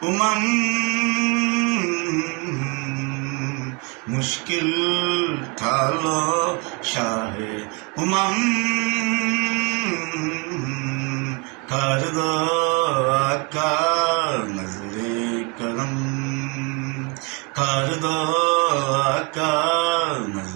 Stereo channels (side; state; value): left; quieter; 31.7 dB